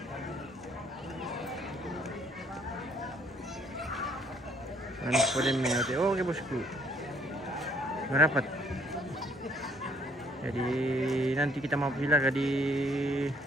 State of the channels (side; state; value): both; normal; correlation 0.63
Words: Boleh mengerti. Oh, oke bosku. Merapat. Jadi nanti kita mau silaga di